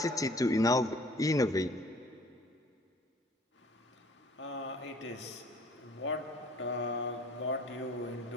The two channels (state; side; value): normal; both; correlation 0.53